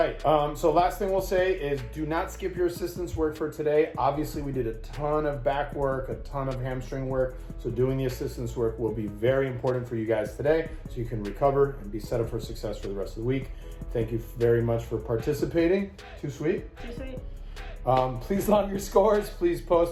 So last thing we'll say is do not skip your assistance work for today. Obviously, we did a ton of back work, a ton of hamstring work. So doing the assistance work will be very important for you guys today so you can recover and be set up for success for the rest of the week. Thank you very much for participating. Too sweet? Too sweet. Please log your scores. Please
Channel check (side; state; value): both; identical; correlation 1.00